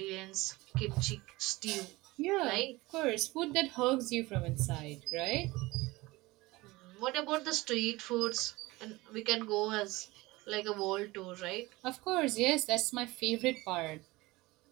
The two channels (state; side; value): quieter; left; 21.0 dB